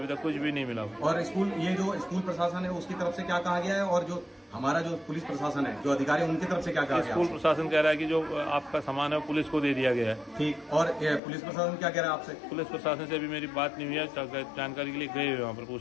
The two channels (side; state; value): right; drops out; at 11.2 s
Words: तक कुछ भी नहीं मिला। और ये जो स्कूल प्रशासन है उसकी तरफ से क्या कहा गया है, और जो हमारा जो पुलिस प्रशासन है, जो अधिकारी, उनकी तरफ से क्या कहा गया? स्कूल प्रशासन कह रहा है कि जो आपका सामान है वो पुलिस को दे दिया गया है। ठीक। और पुलिस प्रशासन क्या कह रहा है आपसे? पुलिस प्रशासन से अभी मेरी बात नहीं हुई है, जानकारी के लिए गए हुए वहाँ पर,